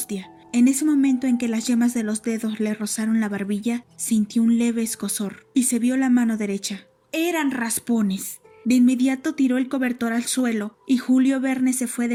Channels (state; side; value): identical; both; correlation 1.00